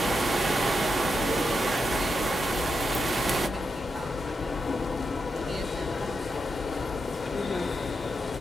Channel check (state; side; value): normal; both; correlation 0.85